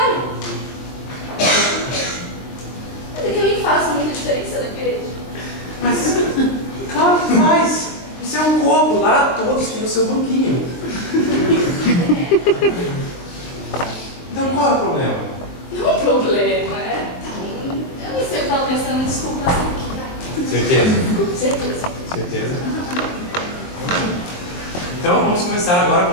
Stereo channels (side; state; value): right; late; 22 ms